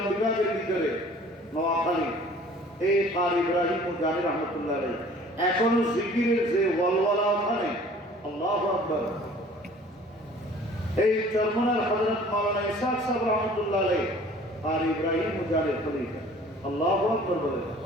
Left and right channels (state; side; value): normal; both; correlation 0.50